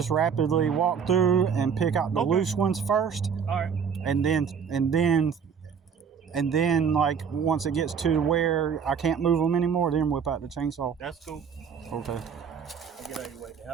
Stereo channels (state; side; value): quieter; left; 6.8 dB